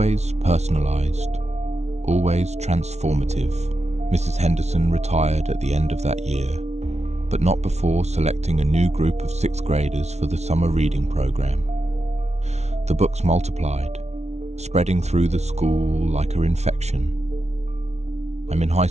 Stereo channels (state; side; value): late; left; 0.32 ms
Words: personalized, always transformative. Mrs. Henderson retired at the end of that year, but not before selecting a new group of 6th graders for the summer reading program. The books multiplied, spreading through the school like an infection. I'm in high